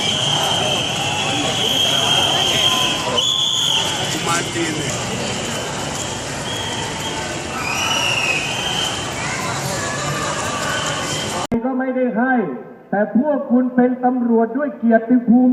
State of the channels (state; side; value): identical; both; correlation 1.00